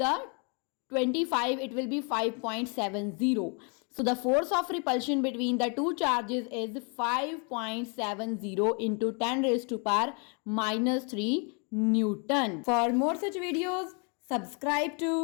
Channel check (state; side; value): quieter; right; 36.0 dB